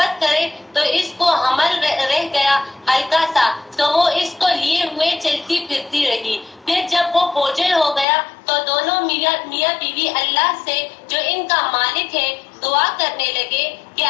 کرے تو اس کو حمل رہ گیا ہلکا سا، تو وہ اس کو لیے ہوئے چلتی پھرتی رہی۔ پھر جب وہ بوجھل ہو گیا تو دونوں میاں بیوی اللہ سے جو ان کا مالک ہے دعا کرنے لگے کہ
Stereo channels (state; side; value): drops out; right; at 8.1 s